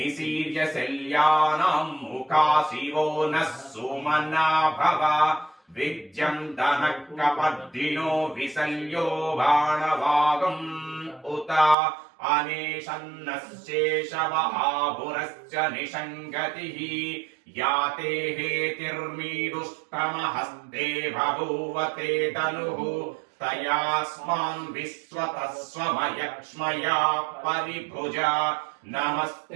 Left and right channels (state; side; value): drops out; left; at 11.8 s